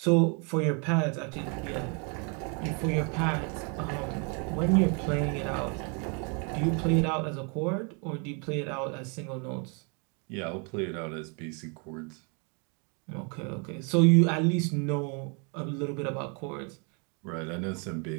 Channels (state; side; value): quieter; left; 35.7 dB